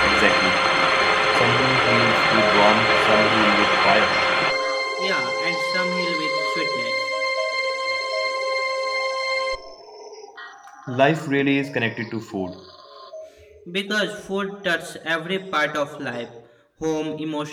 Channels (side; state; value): both; identical; correlation 1.00